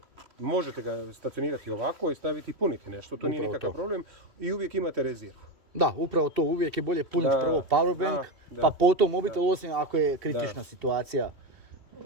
možete ga stacionirati ovako i staviti i puniti nešto, to nije nikakav problem i uvijek imate rezervu. Da, upravo to, uvijek je bolje puniti prvo powerbank, pa potom mobitel, osim ako je kritična situacija.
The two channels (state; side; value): late; left; 2.7 ms